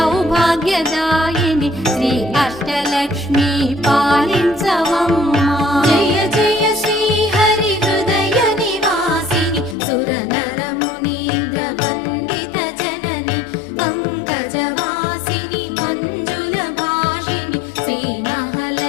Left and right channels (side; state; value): right; drops out; at 9.8 s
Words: శ్రీ అష్టలక్ష్మి పాలించవమ్మా. జయ జయ శ్రీ హరి హృదయ నివాసిని సుర నర మునీంద్ర వందిత జనని పంకజవాసిని మంజుల భాషిని శ్రీ